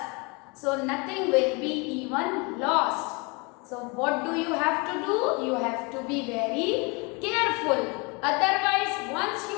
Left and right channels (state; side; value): quieter; right; 29.4 dB